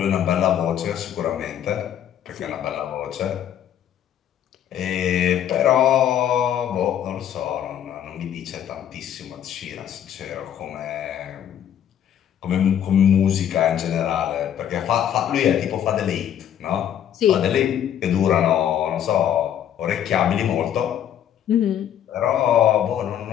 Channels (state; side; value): quieter; right; 10.0 dB